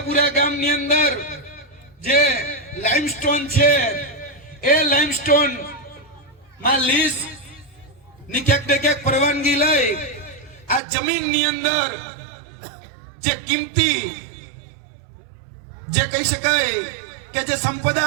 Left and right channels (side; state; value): left; drops out; at 10.8 s